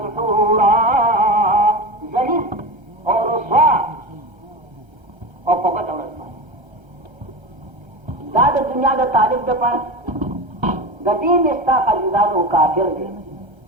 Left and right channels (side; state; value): left; late; 1.3 ms